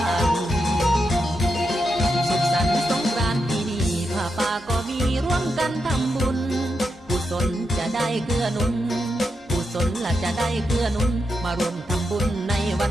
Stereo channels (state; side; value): normal; both; correlation 0.85